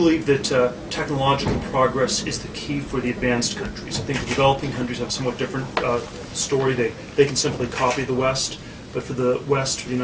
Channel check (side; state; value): both; identical; correlation 1.00